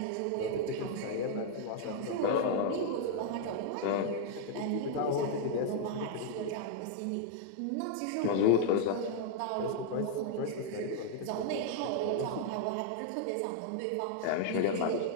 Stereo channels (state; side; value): different; both; correlation -0.01